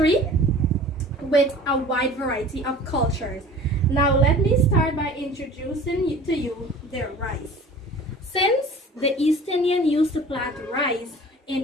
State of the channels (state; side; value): normal; both; correlation 0.44